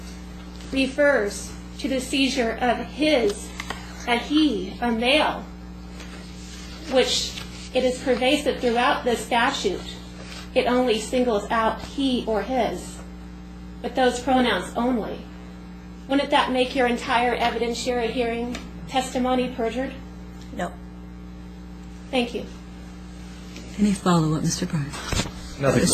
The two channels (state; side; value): identical; both; correlation 1.00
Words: refers to the seizure of a male, which it is pervasive throughout the statute, it only singles out he or his, but those pronouns only. Wouldn't that make your entire evidentiary hearing testimony perjured? No. Thank you. Any follow-up, Mr. Bryan? Nothing.